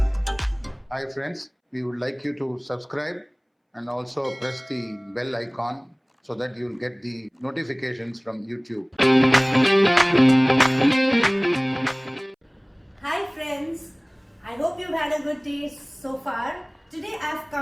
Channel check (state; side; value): identical; both; correlation 1.00